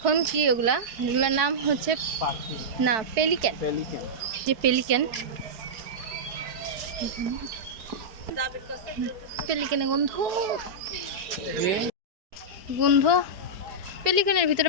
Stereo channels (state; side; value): late; left; 4.6 ms